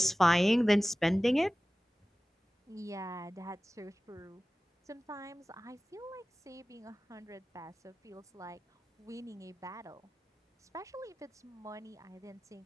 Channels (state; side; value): normal; both; correlation 0.97